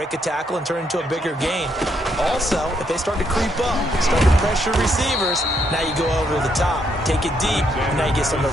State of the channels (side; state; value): both; normal; correlation 0.75